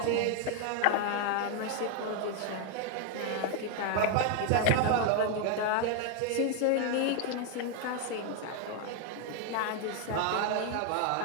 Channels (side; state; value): both; different; correlation 0.01